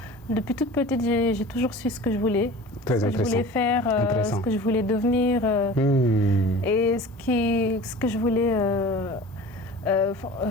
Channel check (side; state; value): both; normal; correlation 0.39